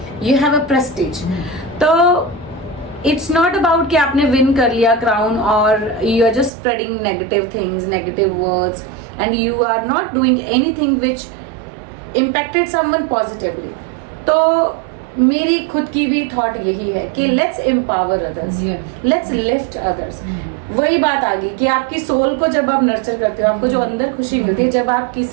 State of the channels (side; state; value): left; drops out; at 6.5 s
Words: you have a prestige. तो इट्स नॉट अबाउट कि आपने विन कर लिया क्राउन और you are just spreading negative things, negative words and you are not doing anything which impacted someone positively. तो मेरी खुद की भी थॉट यही है कि let's empower others, let's lift others. वही बात आ गई कि आपकी सोल को जब आप नर्चर करते हो, आपको जो अंदर खुशी मिलती है जब आप